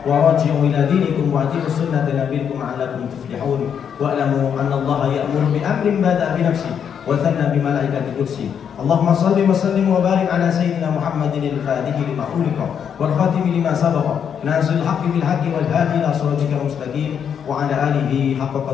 wa raji'u ila dinikum wa ati'u sunnata nabiyikum la'allakum tuflihun wa alamu anna Allaha ya'muru bi amrin bada'a bi nafsihi wa thanna bi malaikati qudsi. Allahumma salli wa sallim wa barik ala sayyidina Muhammadin al-fatihi lima ughliqa wal khatimi lima sabaqa nasil haqqi bil haqqi wal hadi ila siratikal mustaqim wa ala alihi haqqa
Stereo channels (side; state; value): right; quieter; 7.9 dB